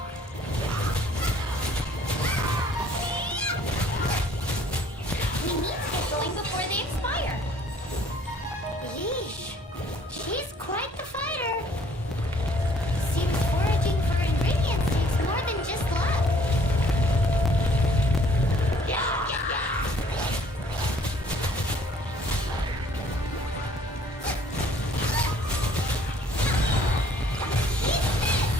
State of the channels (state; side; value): normal; both; correlation 0.59